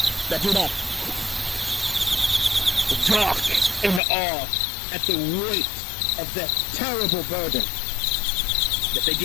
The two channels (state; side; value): drops out; right; at 4.0 s